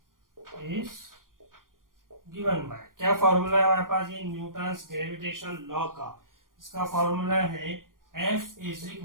is given by, क्या फॉर्मूला है हमारे पास, ये न्यूटन्स ग्रेविटेशन लॉ का, इसका फॉर्मूला है F =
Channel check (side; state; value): left; late; 0.90 ms